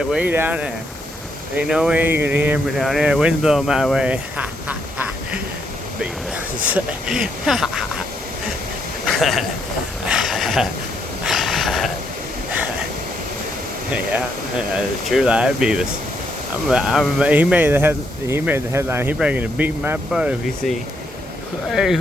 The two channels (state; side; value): normal; both; correlation 0.75